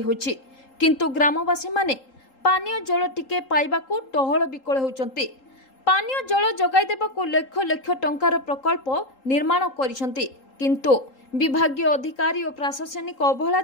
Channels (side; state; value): right; late; 3.8 ms